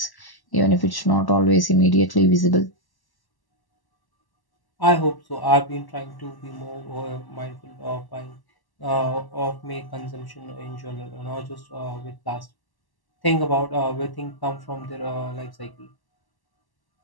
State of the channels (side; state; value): right; late; 1.1 ms